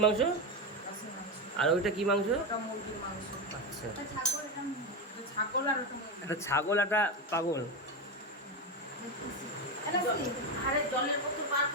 মাংস? আর ওইটা কি মাংস? ওটা মুরগির মাংস। আচ্ছা, এটা ছাগল আর ওটা মুরগি। একটা ছাগল একটা পাগল। আরে জলের বোতল বার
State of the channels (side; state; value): both; normal; correlation 0.14